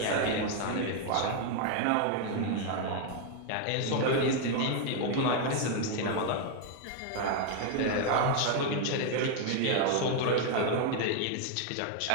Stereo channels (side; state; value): both; different; correlation 0.01